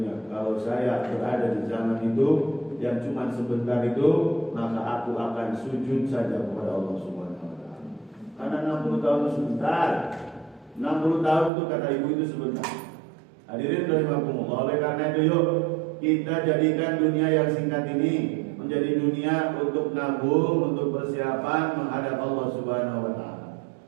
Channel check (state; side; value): drops out; left; at 11.5 s